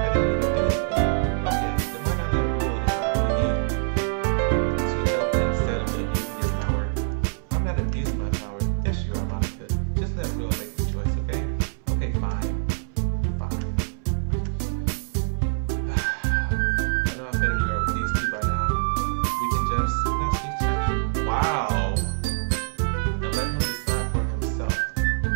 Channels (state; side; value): silent; left; 62 dB below the other